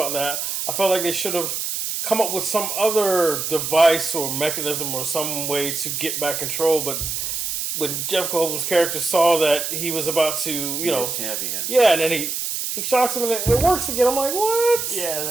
that. I felt like they should have come up with some other device or mechanism or some way to get back control. But when Jeff Goldblum's character saw that he was about to, champion. Yeah, and then he shocks him and it works again. I'm like, what?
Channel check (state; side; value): noise; right; hiss, 3 dB below the sound